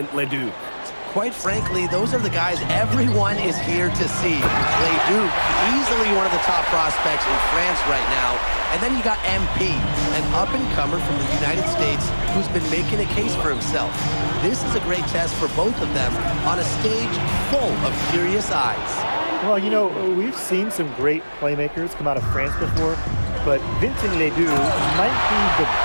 Ledoux. Quite frankly, those are the guys everyone is here to see. Ledoux, easily one of the top prospects in France right now. And then you got MP, an up-and-comer from the United States who's been making a case for himself. This is a great test for both of them on a stage full of curious eyes. Well, you know, we've seen some great playmakers come out of France before, but Vincent Ledoux might be the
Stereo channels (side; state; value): both; inverted; correlation -1.00